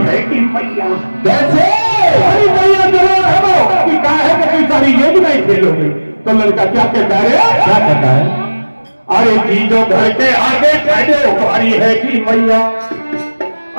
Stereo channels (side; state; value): both; inverted; correlation -1.00